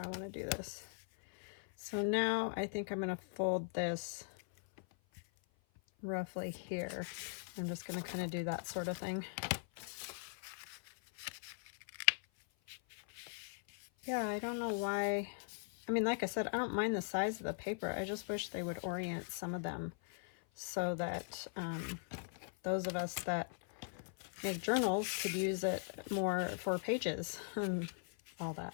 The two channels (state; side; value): silent; right; 51 dB below the other